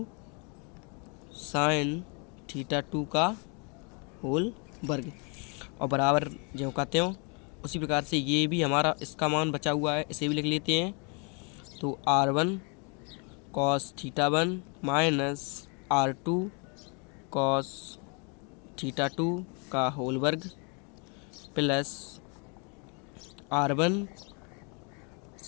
sine theta 2 का होल वर्ग, और बराबर जो कहते हो उसी प्रकार से ये भी हमारा इसका मान बचा हुआ है, इसे भी लिख लेते हैं। तो R1 cos theta 1 minus R2 cos theta 2 का होल वर्ग plus R1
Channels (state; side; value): quieter; right; 35.0 dB